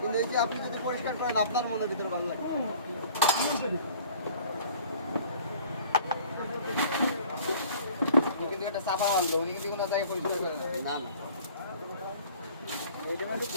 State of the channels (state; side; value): inverted; both; correlation -0.50